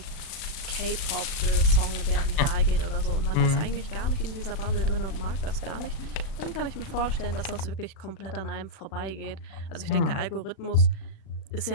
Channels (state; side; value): late; right; 37 ms